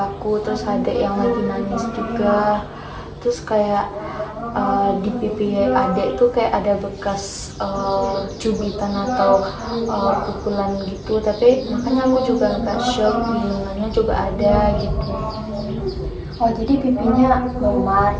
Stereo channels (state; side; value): identical; both; correlation 1.00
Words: aku. Terus ada yang lagi nangis juga. Terus kayak di pipi adek tuh kayak ada bekas cubitan atau pukulan gitu. Tapi makanya aku juga agak shock, di lengannya juga ada gitu. Oh jadi pipinya memar